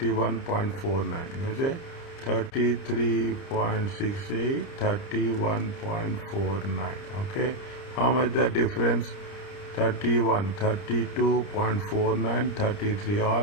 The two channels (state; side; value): late; right; 30 ms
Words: Is it? 33.68, 31.49. Okay. How much the difference? 31, 32.49, 33.